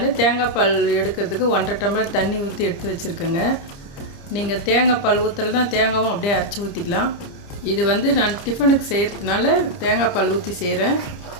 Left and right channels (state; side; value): late; right; 30 ms